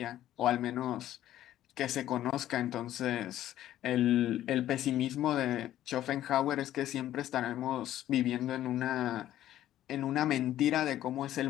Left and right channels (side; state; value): right; quieter; 12.8 dB